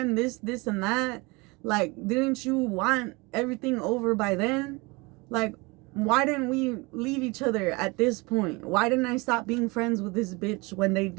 this and that? Like, didn't you want everything over by then? Like, why didn't we leave each other at this point? Why didn't I stop being friends with this bitch when they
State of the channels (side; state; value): left; quieter; 25.9 dB